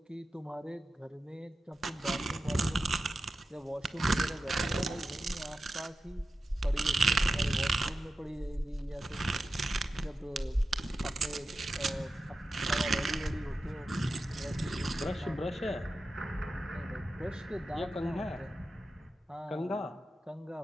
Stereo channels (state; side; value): normal; both; correlation 0.92